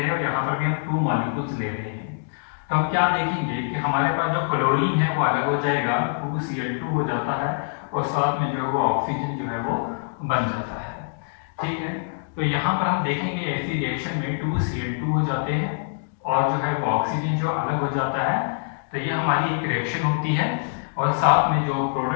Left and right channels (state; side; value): silent; right; digital silence